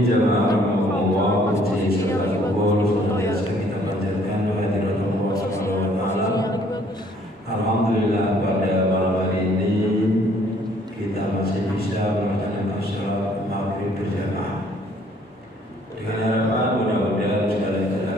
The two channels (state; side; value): normal; both; correlation 0.61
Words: jamaah rahimahumullah, puji serta syukur senantiasa kita panjatkan kehadirat Allah Subhanahu wa taala. Alhamdulillah pada malam hari ini kita masih bisa melaksanakan salat maghrib berjamaah. Dengan harapan mudah-mudahan segala ibadah